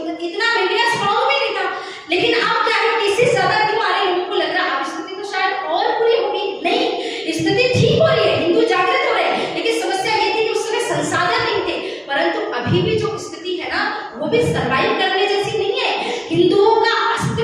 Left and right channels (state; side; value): identical; both; correlation 1.00